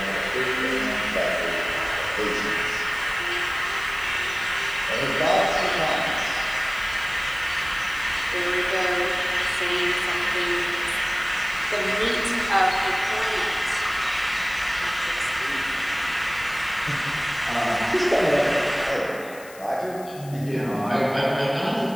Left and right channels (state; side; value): noise; left; hiss, 20 dB below the sound